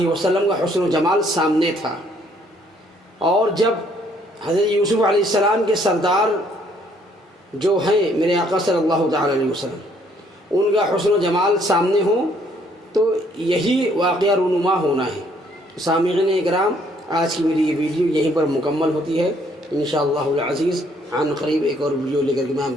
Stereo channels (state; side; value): normal; both; correlation 0.65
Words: وسلم کا حسن و جمال سامنے تھا۔ اور جب حضرت یوسف علیہ السلام کے سردار جو ہیں میرے آقا صلی اللہ تعالی علیہ وسلم، ان کا حسن و جمال سامنے ہو تو یہی واقعہ رونما ہونا ہے۔ سامعین اکرام، آج کی میری یہ ویڈیو یہیں پر مکمل ہوتی ہے۔ انشاءاللہ العزیز عن قریب ایک اور ویڈیو لے کر کے میں